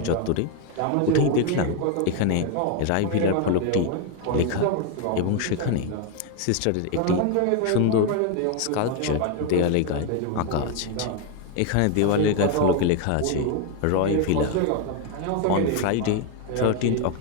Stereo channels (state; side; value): different; both; correlation 0.01